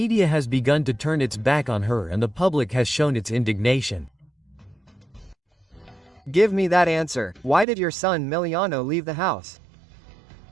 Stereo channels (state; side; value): drops out; left; at 7.7 s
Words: has begun to turn its back on her, and the public has shown its indignation. Give me that answer. Why did your son Miliano leave the house?